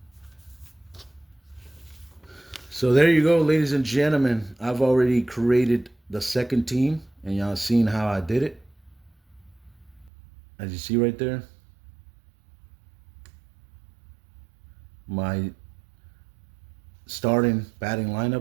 So there you go, ladies and gentlemen. I've already created the second team, and y'all seen how I did it. As you see right there, my starting batting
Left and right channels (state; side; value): drops out; left; at 10.1 s